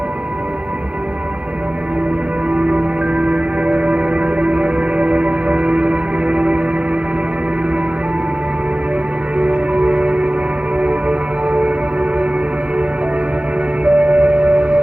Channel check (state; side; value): late; left; 0.061 ms